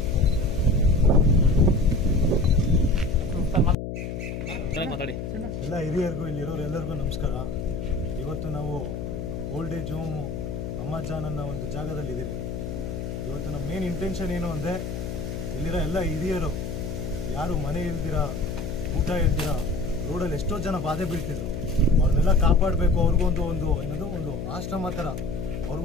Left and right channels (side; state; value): left; noise; hum, 6 dB below the sound